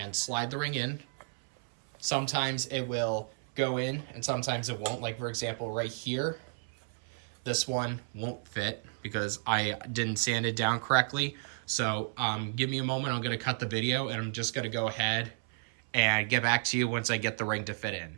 slide the ring in. Sometimes it will go in and sometimes it won't. Like for example, right here, this one won't fit because I didn't sand it down correctly. So give me a moment. I'm going to cut the video and I'm just going to go ahead and get back to you once I get the ring to fit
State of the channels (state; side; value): silent; left; 56 dB below the other